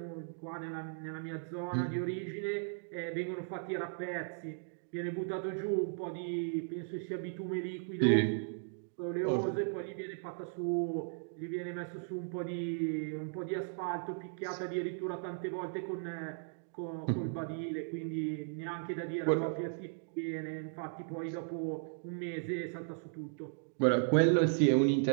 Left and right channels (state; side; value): silent; left; digital silence